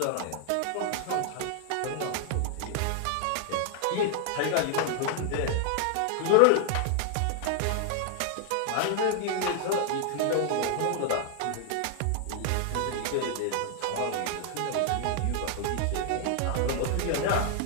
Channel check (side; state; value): both; different; correlation 0.00